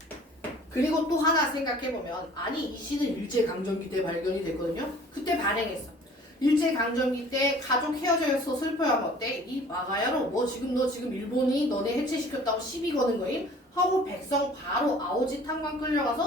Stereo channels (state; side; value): normal; both; correlation 0.50